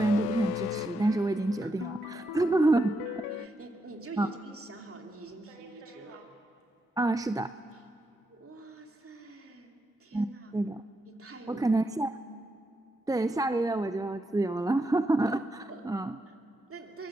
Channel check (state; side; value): normal; both; correlation 0.82